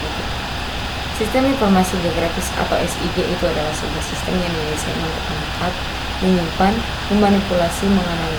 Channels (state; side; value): identical; both; correlation 1.00